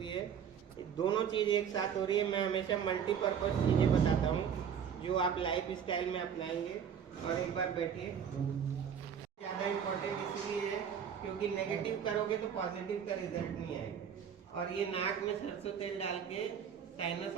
है। दोनों चीज़ एक साथ हो रही है। मैं हमेशा मल्टीपर्पज़ चीज़ें बताता हूँ जो आप लाइफ स्टाइल में अपनाएंगे। और एक बार बैठिए। ज़्यादा इम्पोर्टेंट इसलिए है क्योंकि नेगेटिव करोगे तो पॉजिटिव का रिजल्ट नहीं आएगा। और ये नाक में सरसों तेल डाल के साइनस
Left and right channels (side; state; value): left; quieter; 7.8 dB